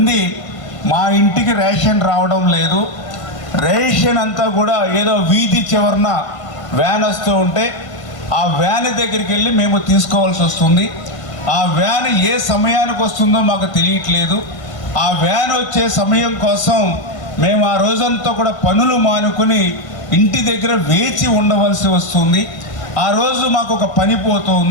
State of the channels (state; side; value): late; right; 1.6 ms